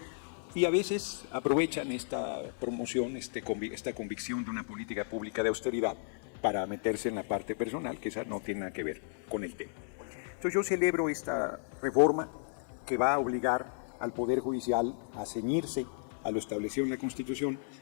y a veces aprovechan esta promoción, esta convicción de una política pública de austeridad para meterse en la parte personal, que esa no tiene nada que ver con el tema. Entonces yo celebro esta reforma que va a obligar al Poder Judicial a ceñirse a lo establecido en la Constitución,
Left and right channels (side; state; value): right; silent; digital silence